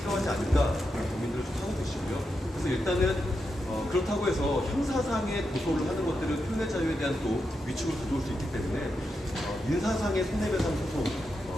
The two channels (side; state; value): both; normal; correlation 0.86